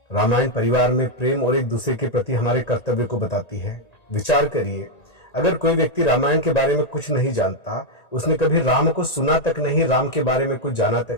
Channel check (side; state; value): right; late; 1.9 ms